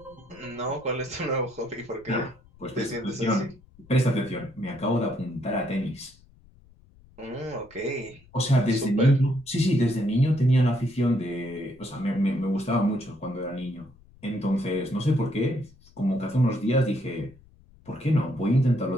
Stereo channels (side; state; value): left; noise; rumble, 26 dB below the sound